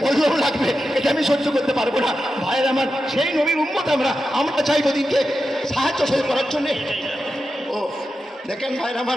বজ্র লাগবে, এটা আমি সহ্য করতে পারবো না। ভাইয়ের আমার, সেই নবীর উম্মত আমরা চাইবো দিনকে সাহায্য করার জন্য। ও দেখেন ভাইয়ের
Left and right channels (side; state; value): both; normal; correlation 0.90